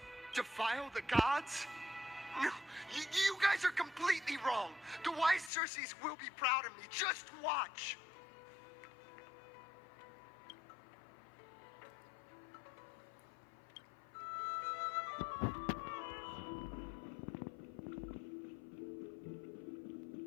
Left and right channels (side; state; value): right; drops out; at 5.5 s